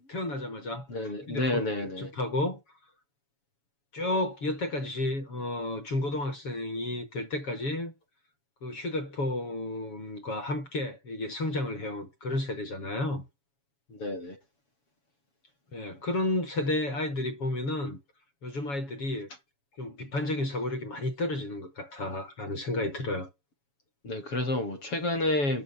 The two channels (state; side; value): late; right; 7.1 ms